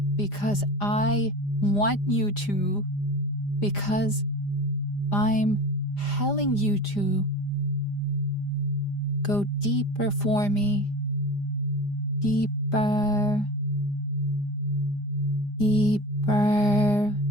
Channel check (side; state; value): right; late; 5.0 ms